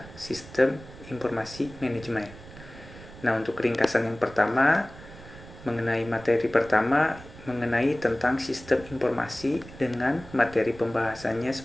Sistem Informasi Manajemen. Nah, untuk ringkasan yang pertama mengenai materi pertama mengenai tentang sistem informasi dengan materi pembahasannya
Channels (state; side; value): noise; right; rumble, 17 dB below the sound